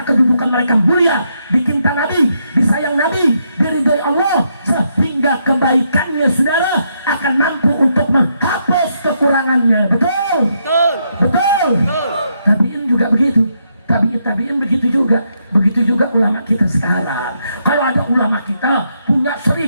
kedudukan mereka mulia, dicinta Nabi, disayang Nabi, diridhoi Allah, sehingga kebaikannya, saudara, akan mampu untuk menghapus kekurangannya. Betul? Betul. Betul. Betul. Tabiin juga begitu. Tabiin begitu juga. Begitu juga ulama kita sekarang. Kalau ada ulama kita punya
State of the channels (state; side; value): inverted; both; correlation -0.78